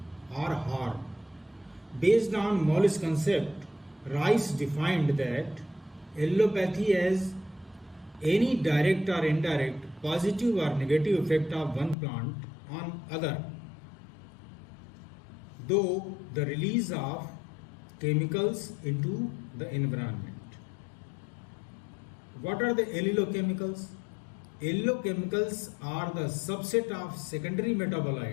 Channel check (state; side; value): drops out; right; at 12.0 s